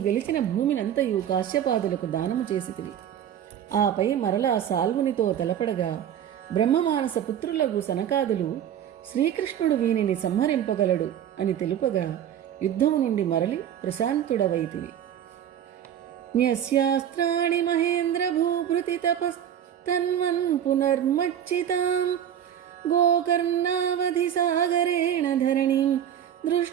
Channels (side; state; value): left; quieter; 9.9 dB